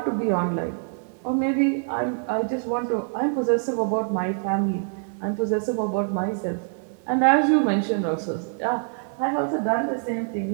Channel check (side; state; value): left; silent; 62 dB below the other